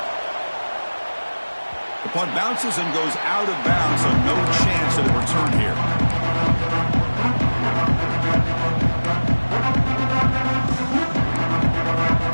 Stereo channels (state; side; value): inverted; both; correlation -1.00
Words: The punt bounces and goes out of bounds, so no chance of a return here.